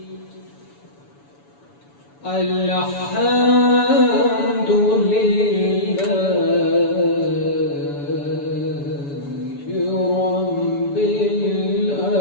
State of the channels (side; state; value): right; late; 7.0 ms